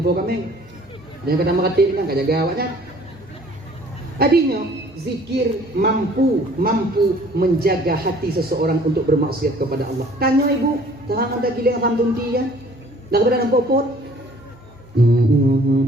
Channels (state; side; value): normal; both; correlation 0.54